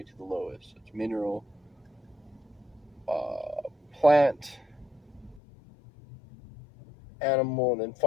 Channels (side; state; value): right; drops out; at 5.4 s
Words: to the lowest. It's mineral, plant, animal, and then